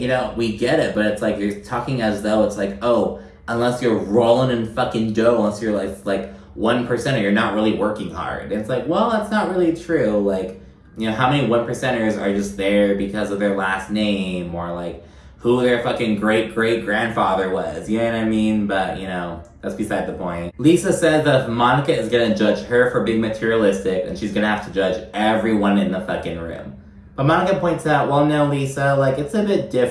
know, we get it. But it's like, you're talking as though it's like, oh, unless you're rolling in fucking dough, unless you're like 1%er, you're not really working hard. And it's like, well, that's not really true. Like, you know, how many 1%ers are just there because of their last name? Or, like, who their fucking great-great-grandfather was. You know what I mean? But, you know, that's beside the point. Lisa says that if Monica is gonna judge her for being materialistic, then she's gonna have to judge everyone in the fucking room. But Monica points out, well, no, Lisa, like, it's a bit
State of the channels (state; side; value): identical; both; correlation 1.00